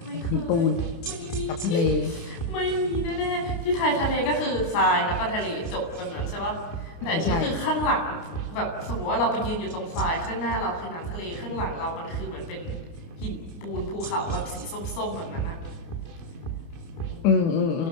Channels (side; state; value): right; late; 29 ms